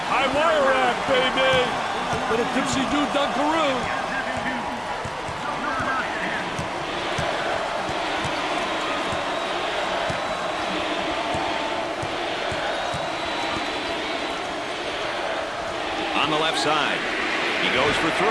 High wire rack, baby. Little tipsy-do dunkaroo. On the left side. He goes for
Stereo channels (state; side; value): identical; both; correlation 1.00